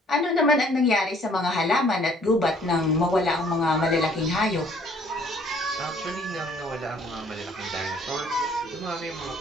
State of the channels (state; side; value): normal; both; correlation 0.59